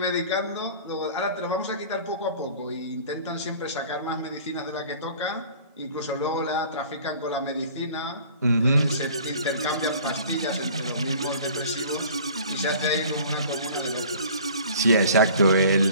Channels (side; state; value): both; inverted; correlation -0.47